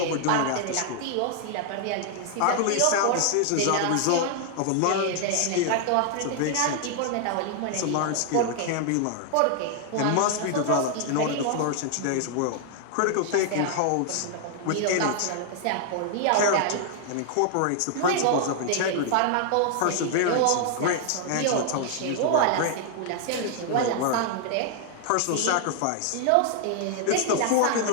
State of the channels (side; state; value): both; different; correlation 0.00